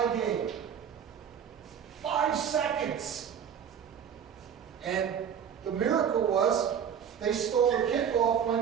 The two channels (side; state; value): left; quieter; 8.1 dB